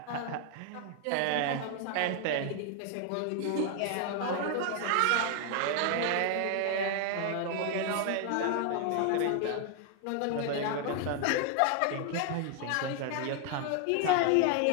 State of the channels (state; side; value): different; both; correlation 0.00